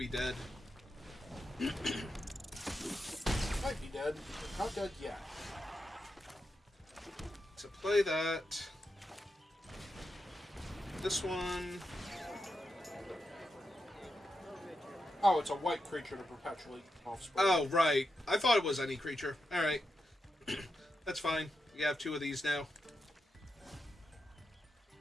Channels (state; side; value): normal; both; correlation 0.87